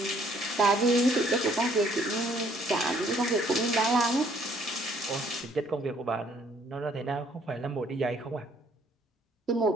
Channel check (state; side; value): normal; both; correlation 0.64